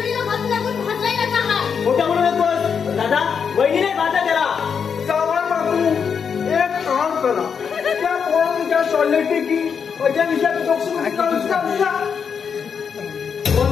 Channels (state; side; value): quieter; right; 6.6 dB